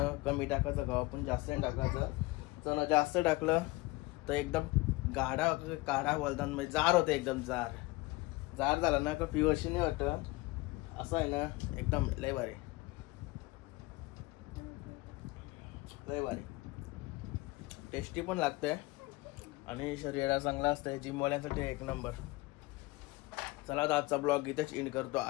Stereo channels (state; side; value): quieter; right; 21.7 dB